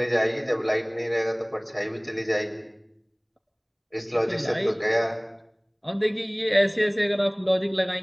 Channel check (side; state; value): both; identical; correlation 1.00